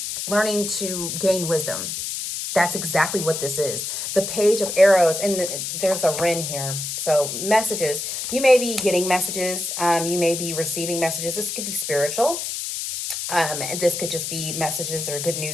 learning to gain wisdom. That's exactly what this is. The Page of Arrows, and there's a Ren here. So messages, you may be getting messages. You may be receiving messages. This could be spiritual. And this could just be messages or good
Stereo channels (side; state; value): left; noise; hiss, 4 dB below the sound